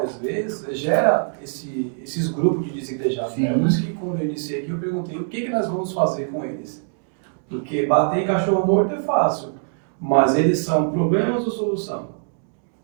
às vezes, gera esses grupos de desigrejados. Né? Por isso que, quando eu iniciei aqui, eu perguntei o que nós vamos fazer com eles. Porque bater em cachorro morto é fácil, mas eles são problemas ou solução?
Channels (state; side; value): silent; left; digital silence